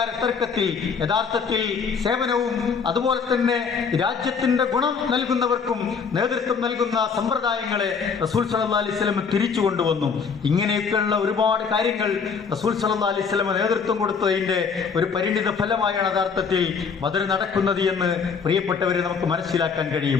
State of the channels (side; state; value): right; quieter; 5.9 dB